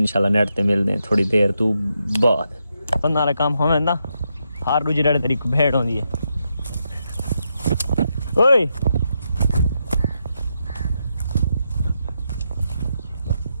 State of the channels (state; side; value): inverted; both; correlation -0.82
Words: नेट ते मिलते हैं थोड़ी देर तू बाद बंदा वाला काम होवे ना हर दूजे डेढ़ तरीक भेड़ होंदी है ओए